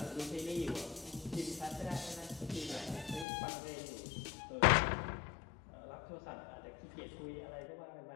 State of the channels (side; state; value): right; drops out; at 3.2 s